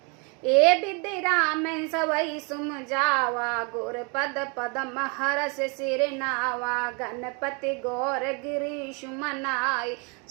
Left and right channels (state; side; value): quieter; left; 33.4 dB